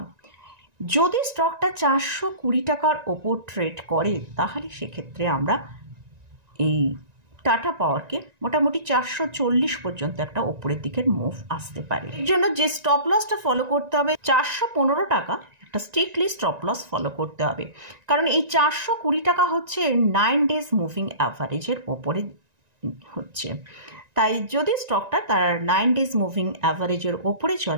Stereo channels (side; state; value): left; late; 1.9 ms